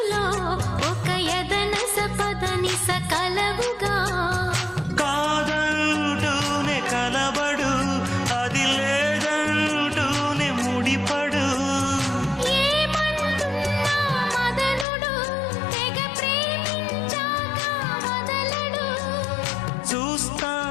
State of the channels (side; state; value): right; drops out; at 14.9 s